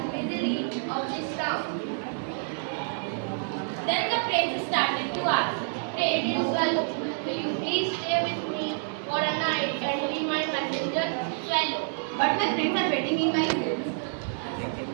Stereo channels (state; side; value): silent; left; 59 dB below the other